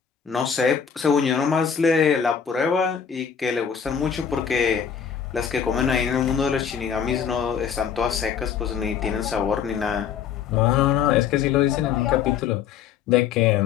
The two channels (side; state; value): right; quieter; 7.5 dB